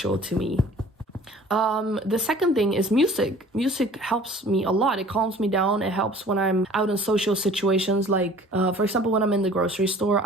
to me. The second thing is music. Music helps me a lot. It calms me down. It helps when I'm out in social situations. Like, for example, when I'm in the grocery store,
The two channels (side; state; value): both; normal; correlation 0.49